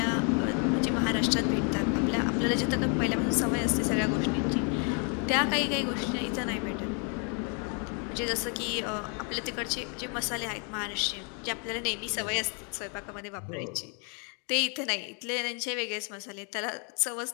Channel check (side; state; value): right; quieter; 38.2 dB